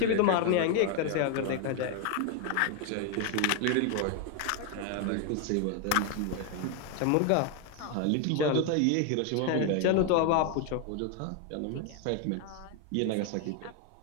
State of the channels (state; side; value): different; both; correlation 0.01